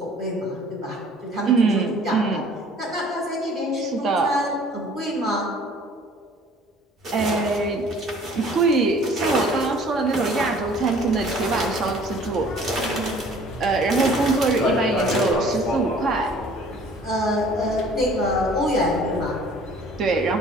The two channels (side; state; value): both; normal; correlation 0.52